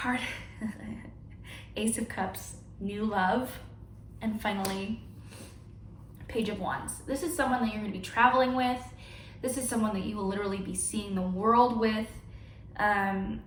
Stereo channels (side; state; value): both; identical; correlation 1.00